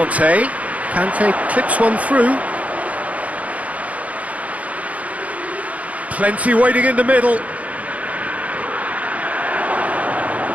Kante clips one through. Plenty waiting in the middle.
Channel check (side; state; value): left; late; 0.069 ms